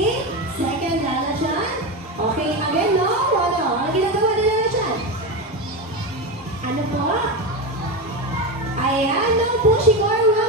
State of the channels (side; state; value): both; normal; correlation 0.17